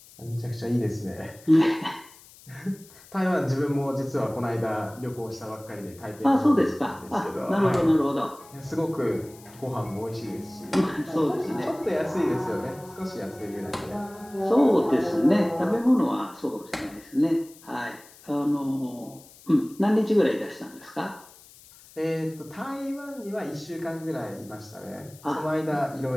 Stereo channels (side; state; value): left; noise; hiss, 23 dB below the sound